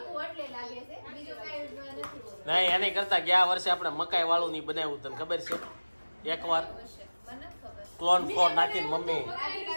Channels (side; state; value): both; inverted; correlation -1.00